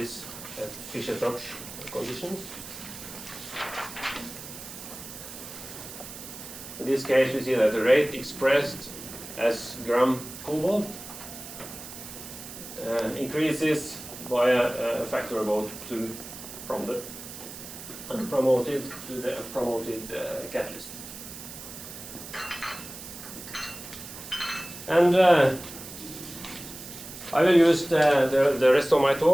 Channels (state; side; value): noise; right; hiss, 12 dB below the sound